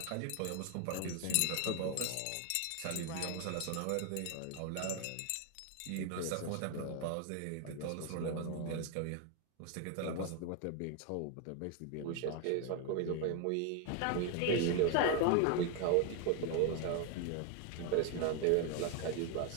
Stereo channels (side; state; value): both; different; correlation 0.01